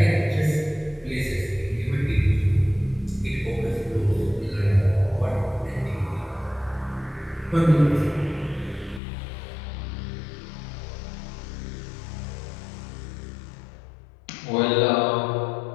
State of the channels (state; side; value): drops out; right; at 9.0 s